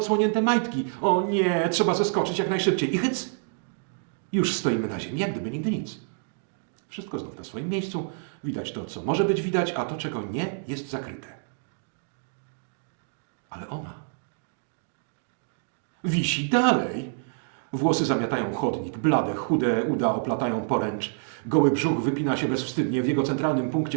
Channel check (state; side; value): silent; left; digital silence